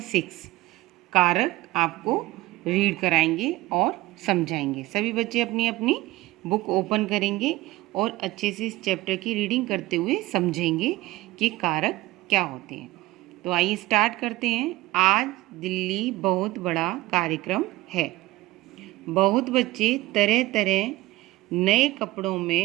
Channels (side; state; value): left; quieter; 18.3 dB